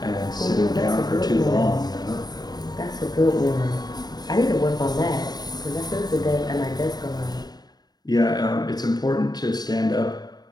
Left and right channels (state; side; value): late; right; 0.19 ms